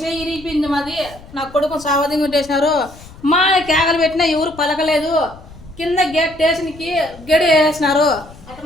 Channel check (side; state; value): left; noise; rumble, 20 dB below the sound